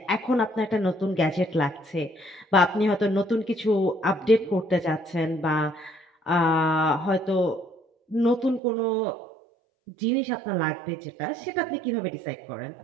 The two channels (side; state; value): left; drops out; at 8.6 s